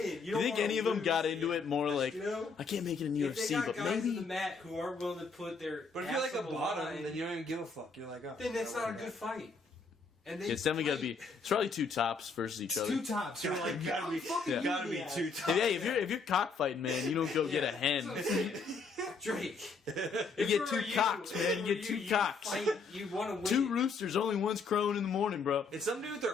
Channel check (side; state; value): right; quieter; 4.6 dB